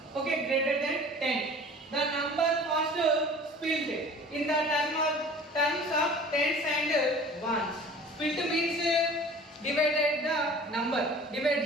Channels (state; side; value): normal; both; correlation 0.44